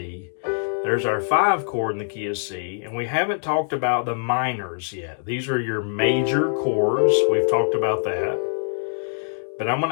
there's our 5 chord in the key of C, and we haven't talked about the minors yet. These are your major chords, we've talked about that, but I'm going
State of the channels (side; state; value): right; silent; digital silence